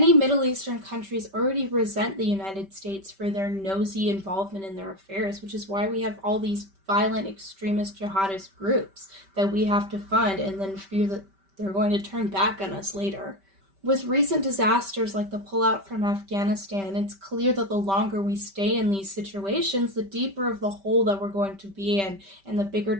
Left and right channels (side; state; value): left; late; 5.1 ms